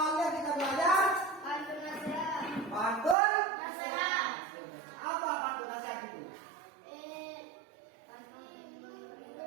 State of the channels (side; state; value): left; drops out; at 3.2 s